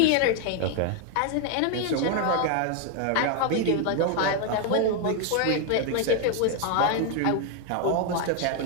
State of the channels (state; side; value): different; both; correlation 0.00